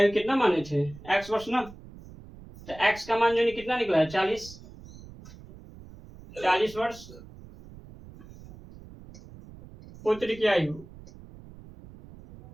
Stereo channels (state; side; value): noise; right; rumble, 19 dB below the sound